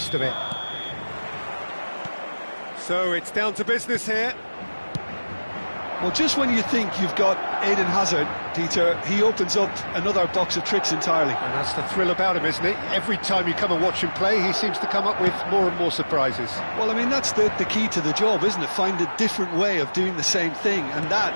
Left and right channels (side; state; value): both; inverted; correlation -1.00